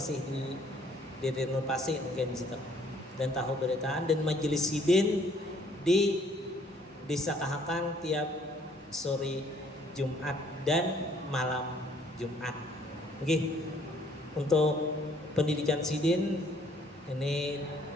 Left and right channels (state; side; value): normal; both; correlation 0.62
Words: di renovasi mungkin di situ. Dan tahu beritaan dan majelis Sidin di Desa Kahakan tiap sore Jumat dan malam Jumat. Oke. Untuk pendidikan Sidin ini